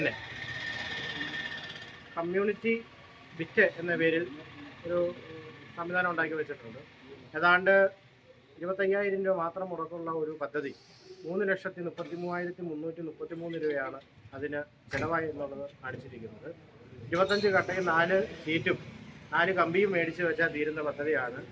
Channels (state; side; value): identical; both; correlation 1.00